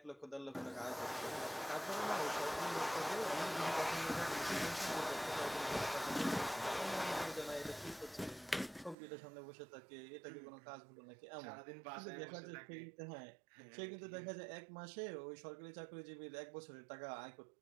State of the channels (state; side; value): drops out; left; at 9.0 s